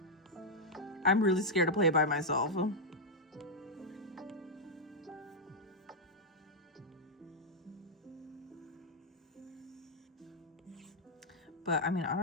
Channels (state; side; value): normal; both; correlation -0.04